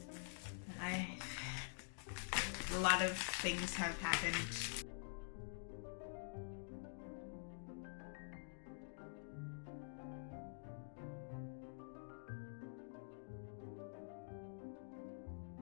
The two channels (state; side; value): silent; right; digital silence